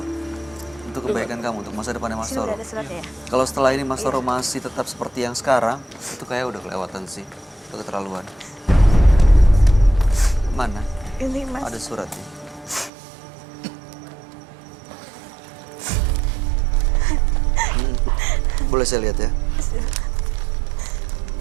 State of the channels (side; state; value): left; drops out; at 12.9 s